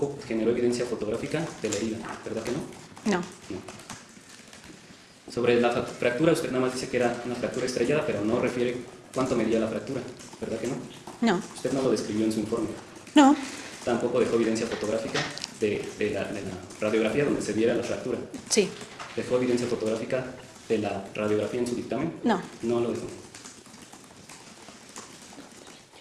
generó evidencia fotográfica de la herida, ¿verdad que no? No. No. Sobre la fractura, usted nada más dice que era una fractura estrellada, pero no refiere cuánto medía la fractura, ¿verdad que no? No. Usted no lo describió en su informe. No. Tampoco dejó evidencia fotográfica de la radiografía donde se viera la fractura. Sí. ¿Dejó evidencia fotográfica de la radiografía en su dictamen? No. No lo dejó.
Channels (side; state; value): both; identical; correlation 1.00